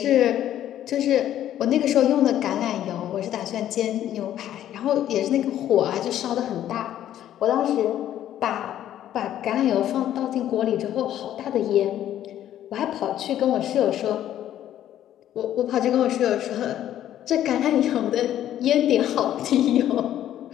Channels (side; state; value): right; quieter; 11.7 dB